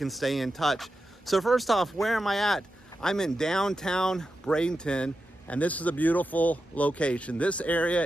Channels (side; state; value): both; normal; correlation 0.90